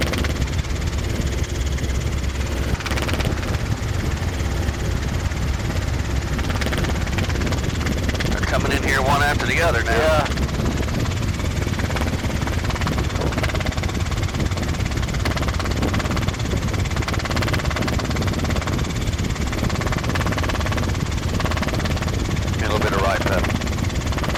They're coming in here one after the other now. Yeah. A little bit of right pedal.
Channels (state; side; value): identical; both; correlation 1.00